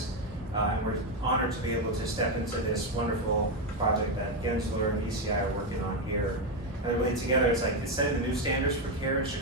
and we're honored to be able to step into this wonderful project that Gensler and ECI are working on here. And really together, it's setting the new standards for care in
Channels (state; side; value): normal; both; correlation 0.08